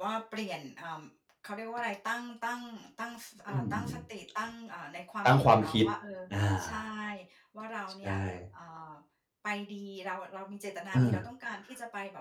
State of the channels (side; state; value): both; identical; correlation 1.00